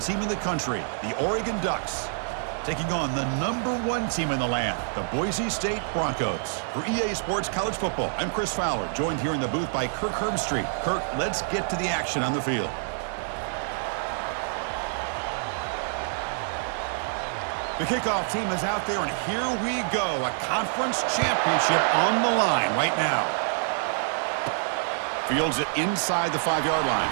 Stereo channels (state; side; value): silent; left; digital silence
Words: in the country, the Oregon Ducks, taking on the number 1 team in the land, the Boise State Broncos. For EA Sports College Football, I'm Chris Fowler, joined here in the booth by Kirk Herbstreit. Kirk, let's get to the action on the field. The kickoff team is out there, and here we go. A conference championship on the line right now. Fields it inside the 5-yard line.